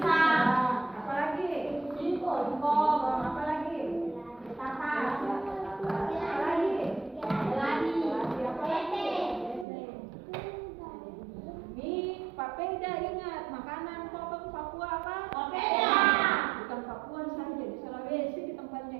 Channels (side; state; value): left; drops out; at 9.7 s